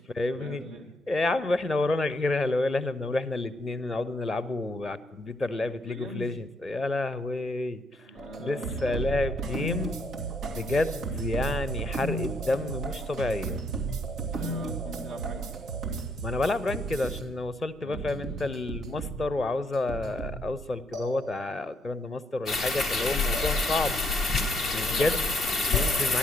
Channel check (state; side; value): normal; both; correlation 0.72